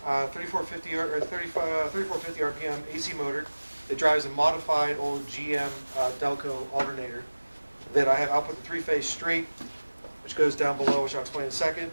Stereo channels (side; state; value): both; inverted; correlation -1.00